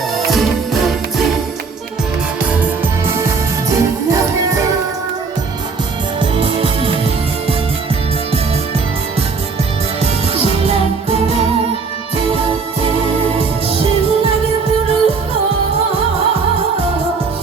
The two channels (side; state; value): left; quieter; 4.8 dB